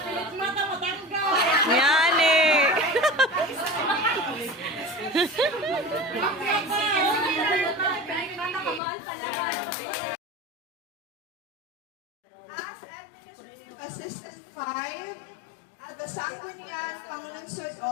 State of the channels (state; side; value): drops out; right; at 8.8 s